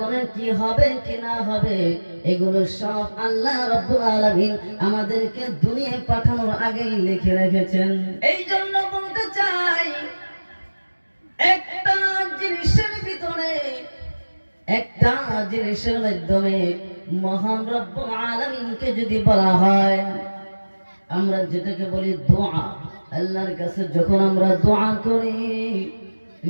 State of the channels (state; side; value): inverted; both; correlation -1.00